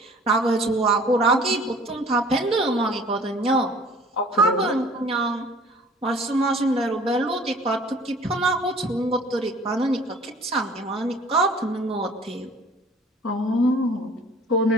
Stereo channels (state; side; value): normal; both; correlation 0.50